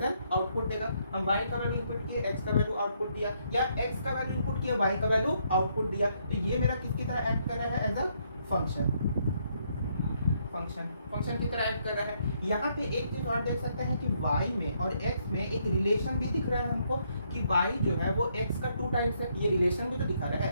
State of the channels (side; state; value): both; inverted; correlation -0.72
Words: एन आउटपुट देगा। हम y का वैल्यू इनपुट किए, x का वैल्यू आउटपुट दिया, या x का वैल्यू इनपुट किया, y का वैल्यू आउटपुट दिया। तो ये मेरा किसकी तरह ऐड कर रहा है, एज अ फंक्शन। फंक्शन की तरह ऐड कर रहा है। यहाँ पे एक चीज और देख सकते हैं कि y में और x में एक रिलेशन भी दिख रहा है हमको कि y जो है वो x का 2 टाइम्स है। ये रिलेशन भी तो दिखा रहा